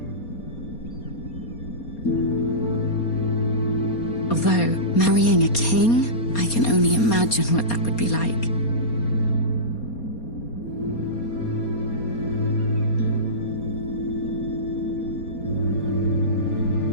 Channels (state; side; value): late; right; 4.3 ms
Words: Although, marrying a king, I can only imagine what that would be like.